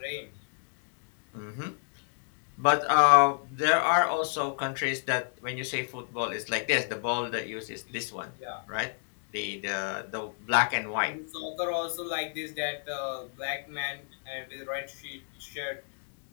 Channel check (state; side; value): silent; right; digital silence